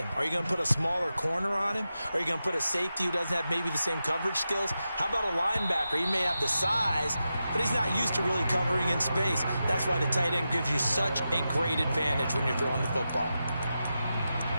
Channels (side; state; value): both; inverted; correlation -0.90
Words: Are you going to put a smaller corner on him? Are you going to put a safety who doesn't have maybe the same coverage skills? How about a linebacker? He may have the size, but he's not used to really covering in space. That's why the tight end gives you such a great advantage when you're throwing the football.